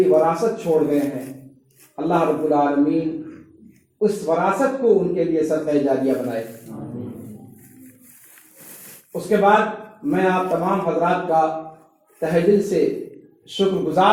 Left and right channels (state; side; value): identical; both; correlation 1.00